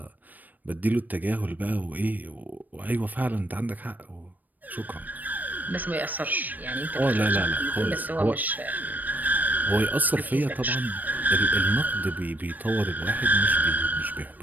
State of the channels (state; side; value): late; left; 0.085 ms